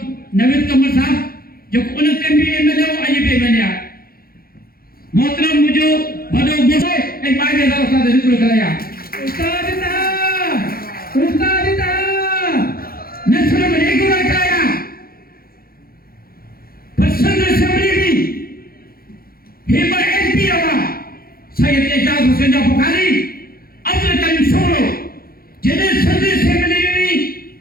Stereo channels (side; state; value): right; late; 0.43 ms